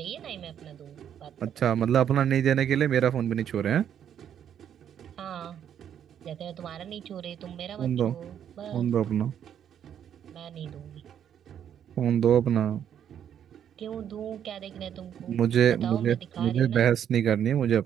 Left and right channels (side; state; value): left; quieter; 9.3 dB